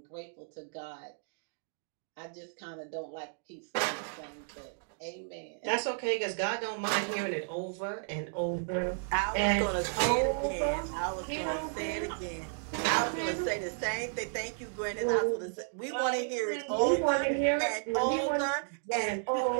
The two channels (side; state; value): left; silent; digital silence